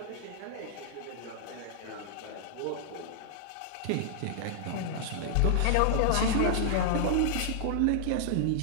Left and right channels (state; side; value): different; both; correlation 0.00